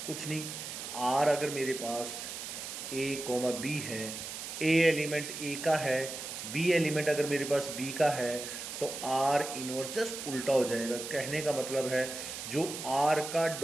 कुछ नहीं, आर अगर मेरे पास ए कोमा बी है, ए एलिमेंट ए का है, बी एलिमेंट अगर मेरे पास बी का है, तो आर इनवर्स जस्ट उल्टा हो जाएगा। कहने का मतलब है जो आर का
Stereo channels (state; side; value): noise; right; hiss, 7 dB below the sound